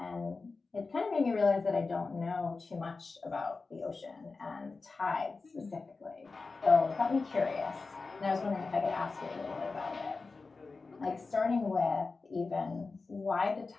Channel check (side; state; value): right; quieter; 4.0 dB